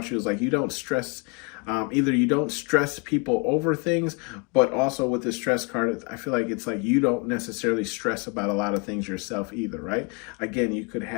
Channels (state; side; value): quieter; right; 32.9 dB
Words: you is like you don't stress. Either you don't stress people over things, but also with the stress card, I feel like it's like you don't necessarily stress about a lot of things yourself either, right? Again, you could